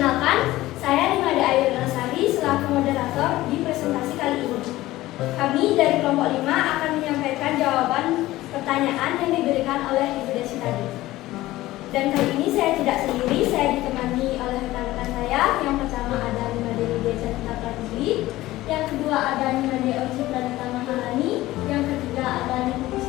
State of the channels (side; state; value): right; quieter; 16.9 dB